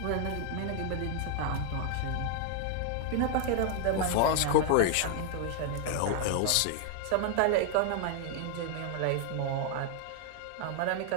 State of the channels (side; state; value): both; different; correlation 0.00